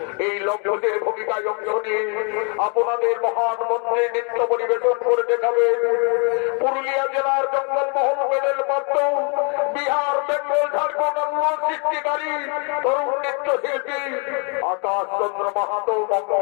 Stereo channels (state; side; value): quieter; right; 36.4 dB